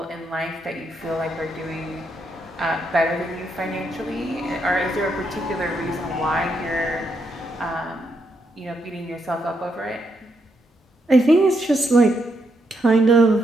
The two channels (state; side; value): normal; both; correlation 0.79